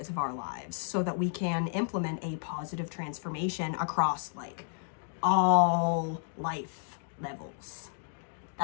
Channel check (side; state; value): right; silent; digital silence